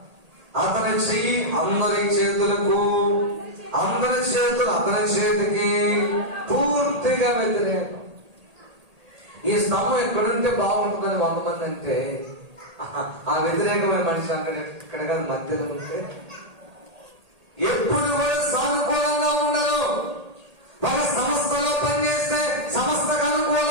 అతని చెయ్యి అందరి చేతులకు, అందరి చేతులు అతని చేతికి పూర్తిగా వ్యతిరేకం. ఈ స్తంభం ఎక్కడుంటే బాగుంటుందని 100 మంది అంటే ఆ వ్యతిరేకమైన మనిషి అక్కడ ఇక్కడ కాదు మధ్యలో ఉంటే ఎప్పుడు కూడా సానుకూలంగా ఉండరు. ఒక సంస్థలో పనిచేస్తే సంస్థకు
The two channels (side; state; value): left; late; 1.8 ms